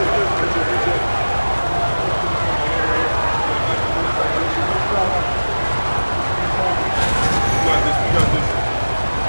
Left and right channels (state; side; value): inverted; both; correlation -1.00